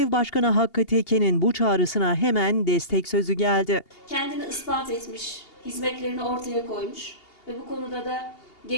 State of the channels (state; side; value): late; right; 2.8 ms